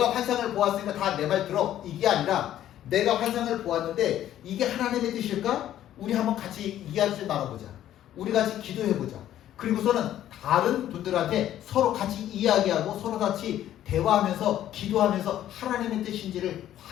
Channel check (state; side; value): quieter; right; 12.0 dB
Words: 환상을 보았으니까 다 내 말 들어, 이게 아니라 내가 환상을 보았는데 이게 하나님의 뜻일까? 우리 한번 같이 이야기 좀 나눠보자. 우리 같이 기도해보자. 그리고서는 다른 분들한테 서로 같이 이야기하고 서로 같이 대화하면서 기도하면서 하나님의 뜻인지를